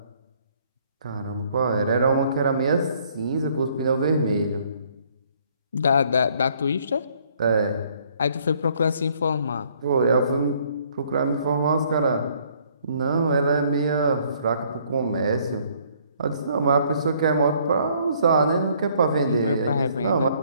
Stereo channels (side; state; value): both; inverted; correlation -0.63